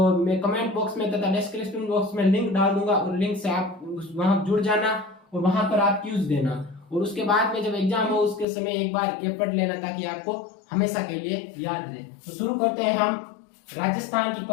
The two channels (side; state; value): right; drops out; at 8.5 s